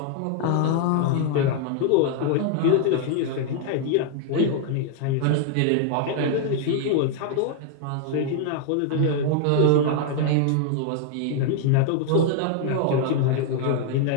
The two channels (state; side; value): different; both; correlation 0.00